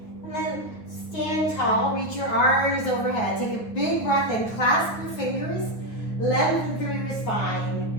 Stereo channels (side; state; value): right; late; 9.4 ms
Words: And then stand tall. Reach your arms overhead. Take a big breath in. Clasp your fingers. Lengthen through your